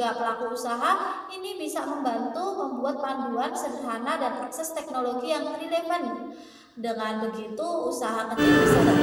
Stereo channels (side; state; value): both; identical; correlation 1.00